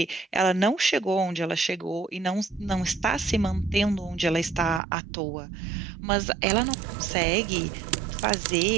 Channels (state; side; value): drops out; left; at 4.8 s